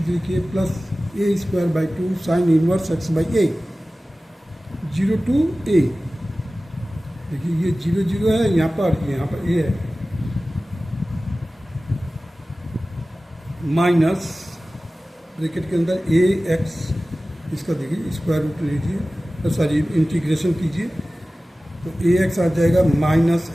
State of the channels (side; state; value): both; normal; correlation 0.96